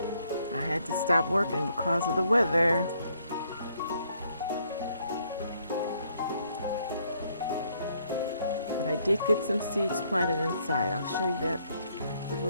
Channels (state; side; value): inverted; both; correlation -0.69